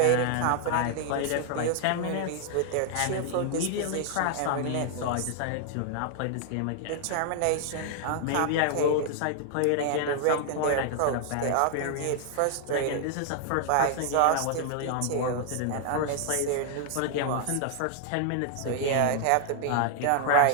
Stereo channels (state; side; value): different; both; correlation 0.00